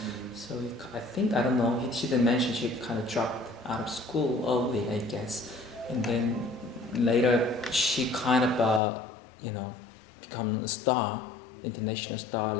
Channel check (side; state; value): right; drops out; at 8.8 s